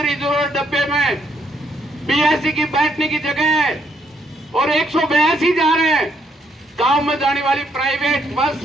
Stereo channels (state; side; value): normal; both; correlation 0.73